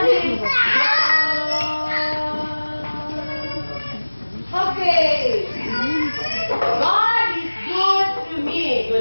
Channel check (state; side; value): inverted; both; correlation -1.00